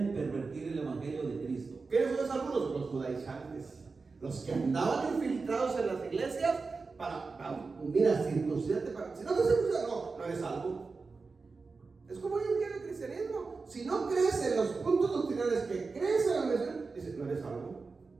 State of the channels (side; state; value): left; quieter; 4.3 dB